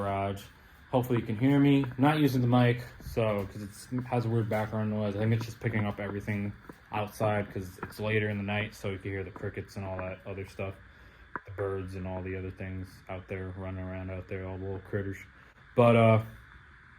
Hopefully you can hear me. I'm not using the mic, because it has a weird background noise. I think it's just picking up everything outside because it's later in the night, so you can hear the crickets and all that other stuff. The birds and all the other things out there running around out there, all the little critters. But,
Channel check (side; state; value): both; identical; correlation 1.00